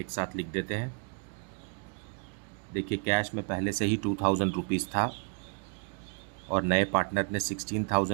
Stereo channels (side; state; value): left; quieter; 38.9 dB